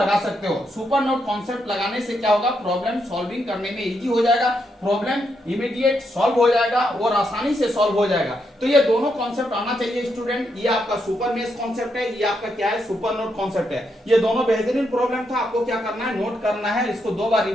सकते हो। सुपर नोड कॉन्सेप्ट लगाने से क्या होगा, प्रॉब्लम सॉल्विंग करने में इजी हो जाएगा, प्रॉब्लम इमीडिएट सॉल्व हो जाएगा और आसानी से सॉल्व हो जाएगा। तो ये दोनों कॉन्सेप्ट आना चाहिए स्टूडेंट। ये आपका सुपर मेश कॉन्सेप्ट है, ये आपका क्या है, सुपर नोड कॉन्सेप्ट है। ये दोनों बेहतरीन प्रॉब्लम था। आपको क्या करना है, नोट करना है, इसको 2 बार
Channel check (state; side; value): normal; both; correlation 0.80